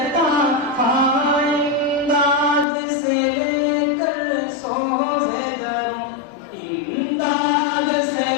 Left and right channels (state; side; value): drops out; right; at 2.7 s